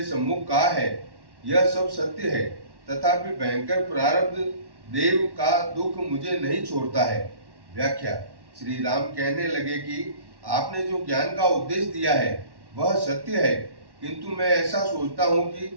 सम्मुख कहा है यह सब सत्य है, तथापि भयंकर प्रारब्ध देव का दुख मुझे नहीं छोड़ता है। व्याख्या। श्री राम कहने लगे कि आपने जो ज्ञान का उपदेश दिया है वह सत्य है, किंतु मैं ऐसा सोचता हूँ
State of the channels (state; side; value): late; left; 1.1 ms